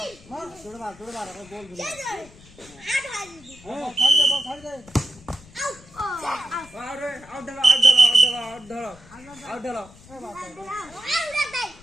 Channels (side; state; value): left; noise; rumble, 23 dB below the sound